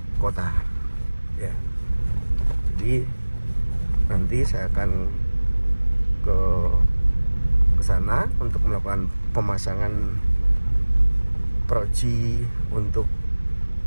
kota ya. Jadi nanti saya akan ke sana untuk melakukan pemasangan proji untuk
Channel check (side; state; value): both; inverted; correlation -1.00